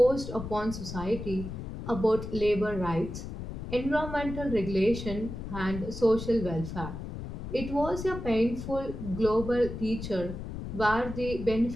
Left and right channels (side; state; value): left; noise; rumble, 8 dB below the sound